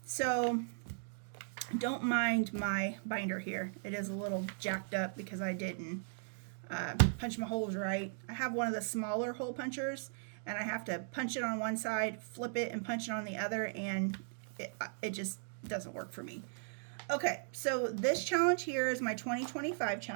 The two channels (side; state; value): left; silent; digital silence